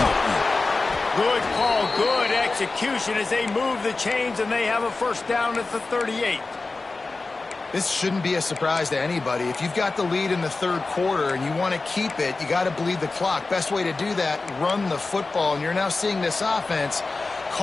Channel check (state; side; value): quieter; right; 3.6 dB